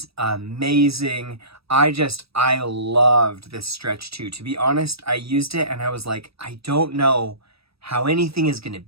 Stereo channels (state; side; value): late; left; 0.77 ms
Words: amazing. I loved this Stretch 2. To be honest, I used it and I was like, I don't know how anything is going to